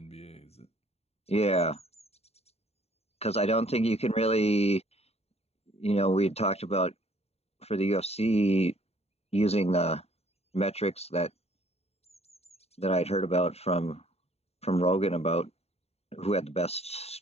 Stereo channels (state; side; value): late; right; 0.30 ms